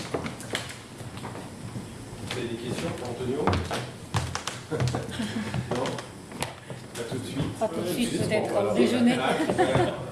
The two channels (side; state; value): both; identical; correlation 1.00